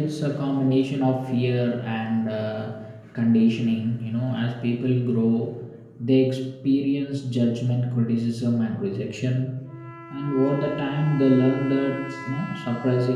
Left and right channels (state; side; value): identical; both; correlation 1.00